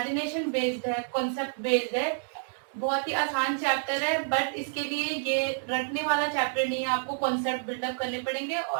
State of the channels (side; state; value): left; silent; digital silence